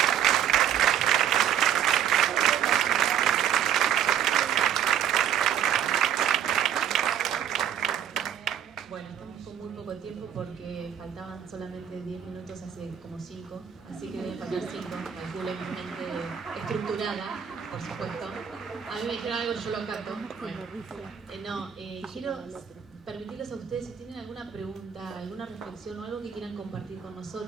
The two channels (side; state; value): left; quieter; 9.1 dB